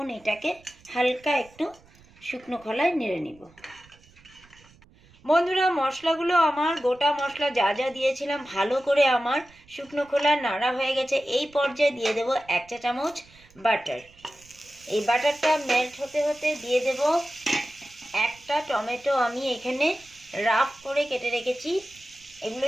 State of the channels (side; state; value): right; noise; rumble, 27 dB below the sound